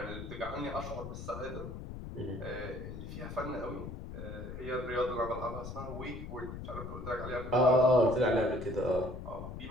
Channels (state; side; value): noise; left; rumble, 8 dB below the sound